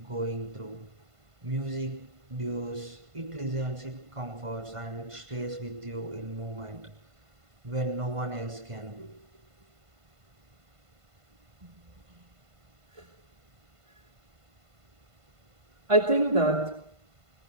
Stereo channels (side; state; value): left; late; 1.5 ms